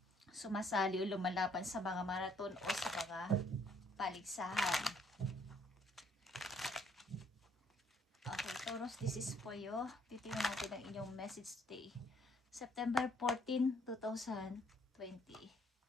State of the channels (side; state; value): both; normal; correlation 0.66